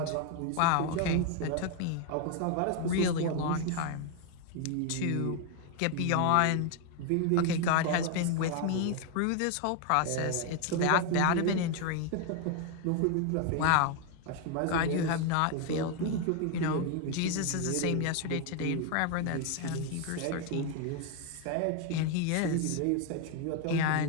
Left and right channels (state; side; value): different; both; correlation 0.01